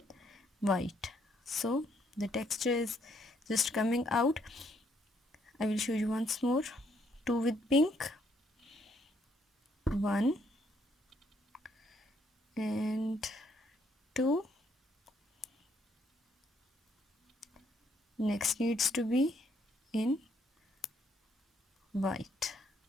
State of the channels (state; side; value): normal; both; correlation 0.70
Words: white. So the texture is just coming out. I will show you once more. 2 with pink, 1 and 2. Next needs to be in white.